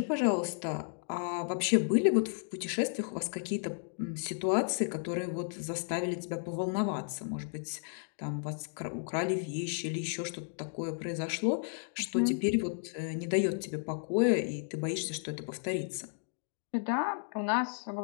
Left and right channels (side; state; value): right; silent; digital silence